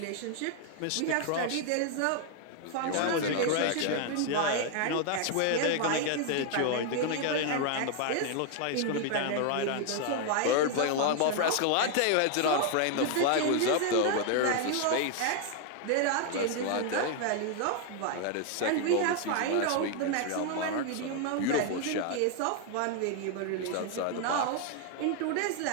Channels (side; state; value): both; different; correlation 0.00